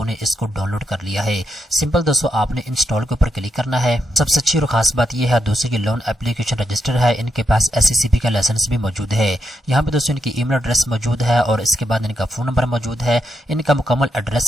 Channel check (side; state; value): both; normal; correlation 0.83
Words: ने इसको डाउनलोड कर लिया है। सिंपल दोस्तों आपने इंस्टॉल के ऊपर क्लिक करना है। सबसे अच्छी और खास बात यह है दोस्तों ये लोन एप्लीकेशन रजिस्टर है, इनके पास SCCB का लाइसेंस भी मौजूद है। यहाँ पे दोस्तों इनकी ईमेल एड्रेस मौजूद है और इसके बाद इनका फोन नंबर मौजूद है। इनका मुकम्मल